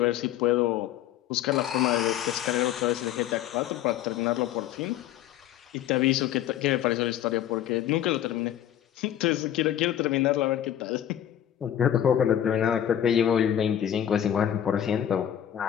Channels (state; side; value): quieter; right; 10.8 dB